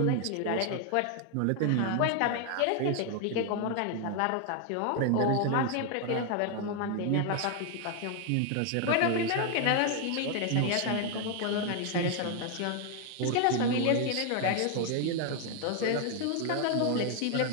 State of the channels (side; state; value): both; different; correlation 0.01